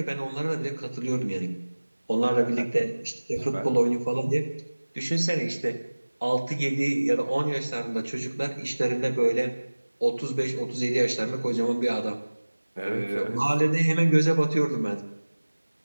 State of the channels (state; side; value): inverted; both; correlation -1.00